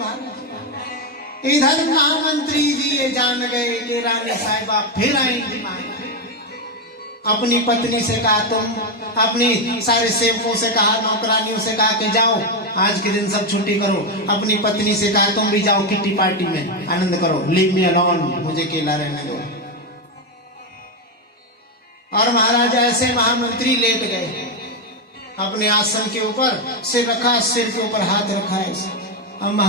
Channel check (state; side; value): normal; both; correlation 0.07